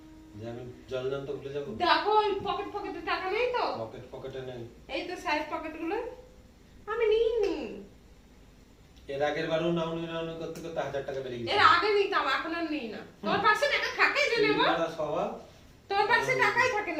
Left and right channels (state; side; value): identical; both; correlation 1.00